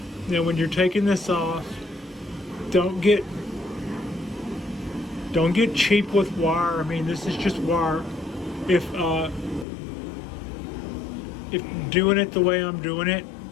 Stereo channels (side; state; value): right; drops out; at 9.7 s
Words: now when you're taking this off, don't get cheap with wire. I mean, this is just wire. If doing it the way I'm doing it,